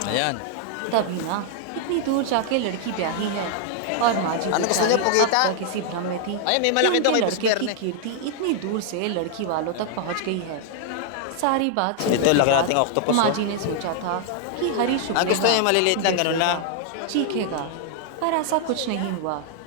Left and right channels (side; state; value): both; different; correlation 0.00